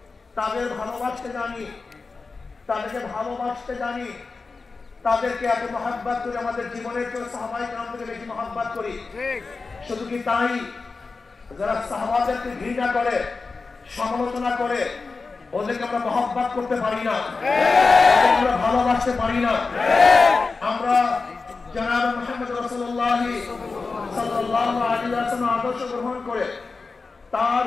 তাদের ভালোবাসতে জানি, তাদেরকে ভালোবাসতে জানি, তাদেরকে এত মহব্বত করি, আমাদের জীবনের কেউ সাহাবায়ে কেরাম থেকে বেশি মহব্বত করি। শুধু কি তাই, যারা সাহাবাদেরকে ঘৃণা করে, সমালোচনা করে, ওদেরকে আমরা মহব্বত করতে পারি না, আমরা ভালোবাসতে পারি না। আমরা জনাব মুহাম্মদ রাসূলুল্লাহ সাল্লাল্লাহু আলাইহি ওয়াসাল্লাম আদর্শ গ্রহণ করে তার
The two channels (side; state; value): right; quieter; 4.2 dB